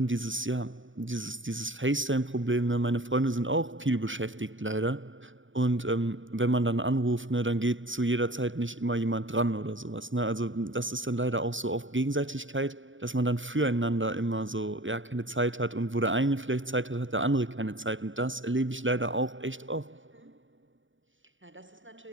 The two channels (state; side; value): late; left; 0.56 ms